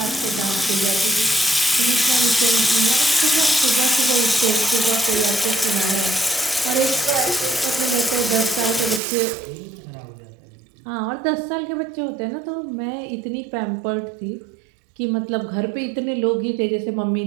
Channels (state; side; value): drops out; left; at 9.0 s